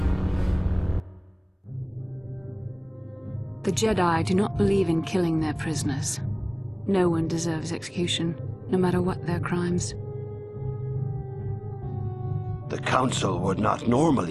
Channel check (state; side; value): identical; both; correlation 1.00